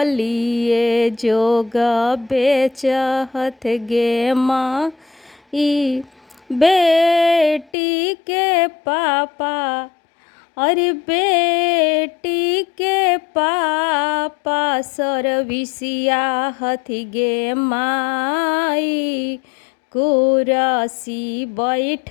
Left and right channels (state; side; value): drops out; right; at 7.7 s